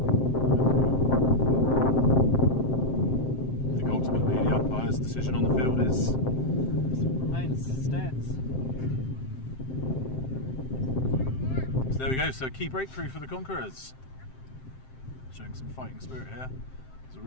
I think ultimately the umpire's decision on the field Stands. So there we go, so key breakthrough for the Conquerors. Showing some fighting spirit here. There's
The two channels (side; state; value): right; late; 7.7 ms